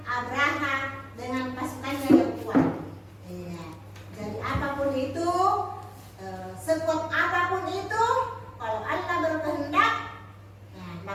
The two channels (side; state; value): both; identical; correlation 1.00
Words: Abraha dengan pasukannya yang kuat. Iya. Jadi apapun itu, sekuat apapun itu, kalau Allah berkehendak, nah,